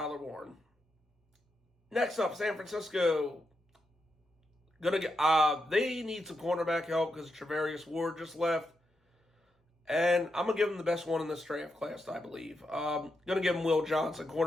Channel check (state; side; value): normal; both; correlation 0.84